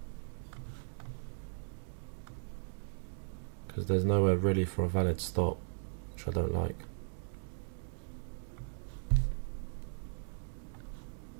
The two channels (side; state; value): left; silent; digital silence